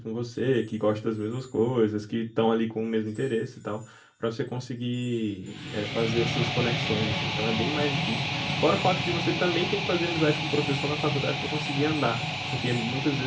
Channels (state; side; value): identical; both; correlation 1.00